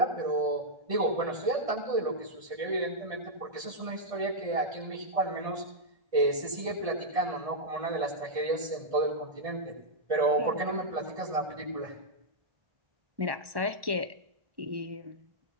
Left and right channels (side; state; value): left; late; 1.1 ms